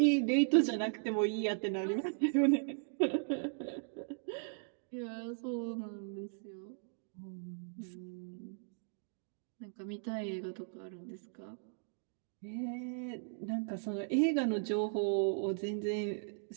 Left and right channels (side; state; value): left; silent; digital silence